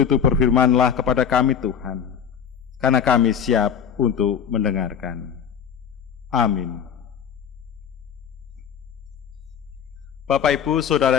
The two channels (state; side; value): quieter; right; 7.9 dB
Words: itu berfirmanlah kepada kami Tuhan, karena kami siap untuk mendengarkan. Amin. Bapak, Ibu,